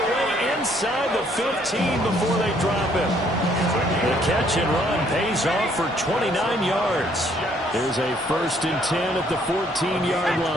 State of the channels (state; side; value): normal; both; correlation 0.65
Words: way inside the 15 before they drop him. The catch and run pays off for 29 yards. Here's a first and 10 at the 14-yard